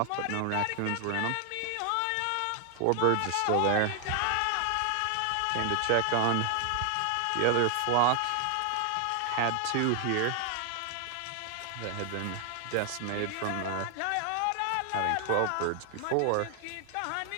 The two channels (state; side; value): different; both; correlation 0.00